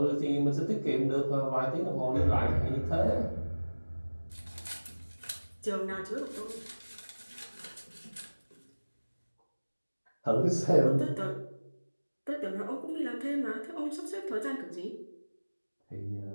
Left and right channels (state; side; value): inverted; both; correlation -1.00